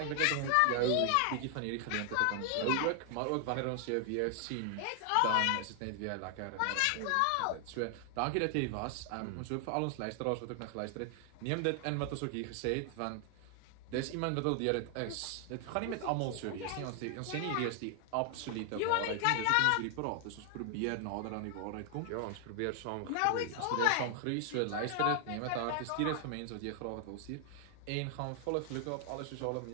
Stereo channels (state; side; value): different; both; correlation 0.00